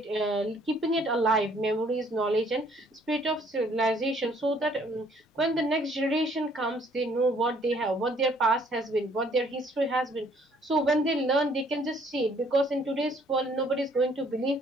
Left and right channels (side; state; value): both; normal; correlation 0.62